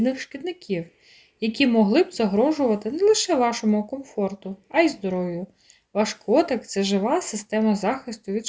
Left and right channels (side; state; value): both; identical; correlation 1.00